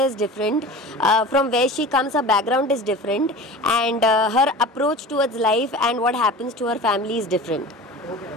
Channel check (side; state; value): both; normal; correlation 0.36